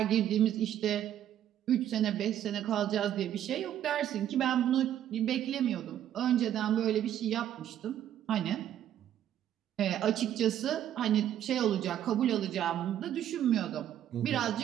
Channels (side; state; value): left; quieter; 11.0 dB